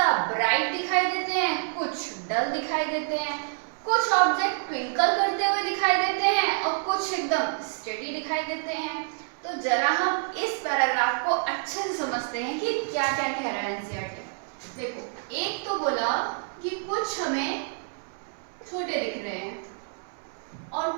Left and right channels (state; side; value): silent; left; 60 dB below the other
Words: ब्राइट दिखाई देते हैं, कुछ डल दिखाई देते हैं, कुछ ऑब्जेक्ट ट्विंकल करते हुए दिखाई देते हैं और कुछ एकदम स्टेडी दिखाई देते हैं। तो जरा हम इस पैराग्राफ को अच्छे से समझते हैं कि क्या क्या कह रहा है एनसीईआरटी। देखो, एक तो बोला कि कुछ हमें छोटे दिख रहे हैं और